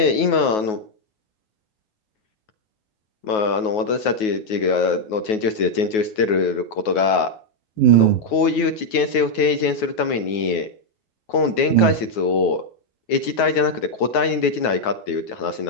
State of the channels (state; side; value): late; right; 9.3 ms